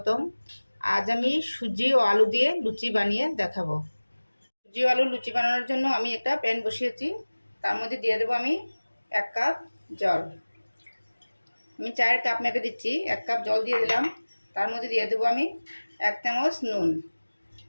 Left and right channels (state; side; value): inverted; both; correlation -1.00